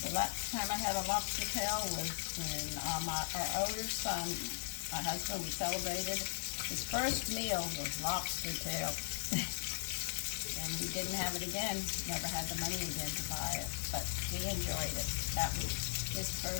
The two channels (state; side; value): silent; right; digital silence